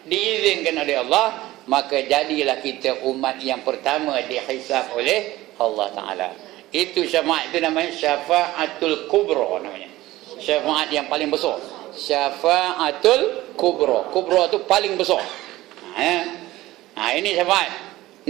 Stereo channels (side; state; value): left; quieter; 17.1 dB